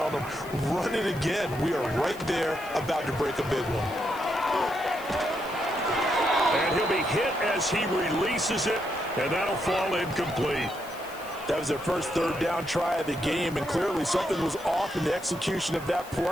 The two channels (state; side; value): noise; left; hiss, 19 dB below the sound